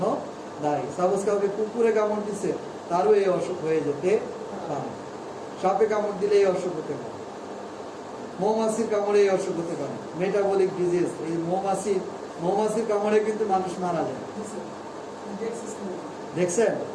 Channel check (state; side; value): identical; both; correlation 1.00